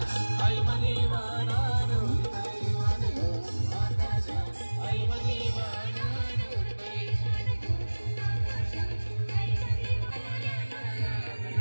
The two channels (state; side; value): inverted; both; correlation -1.00